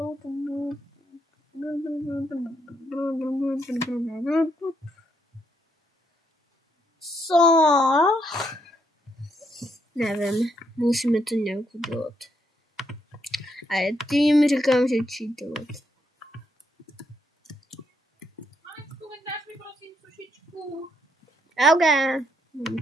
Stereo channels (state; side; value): normal; both; correlation 0.76